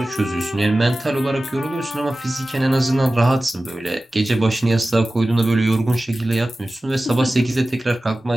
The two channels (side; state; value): both; normal; correlation 0.96